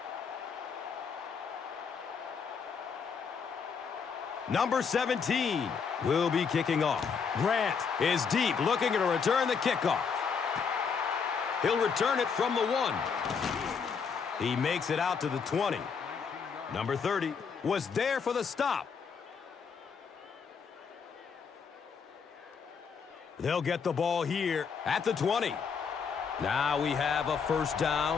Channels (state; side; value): quieter; right; 6.0 dB